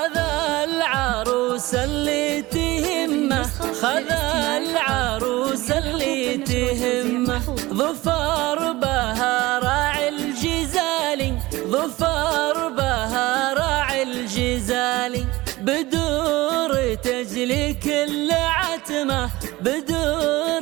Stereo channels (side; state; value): left; quieter; 19.5 dB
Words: العروس اللي تهمه، خذ العروس اللي تهمه، ظفر بها راعي الجزالي، ظفر بها راعي الجزالي. بدور تجلي كل عتمه،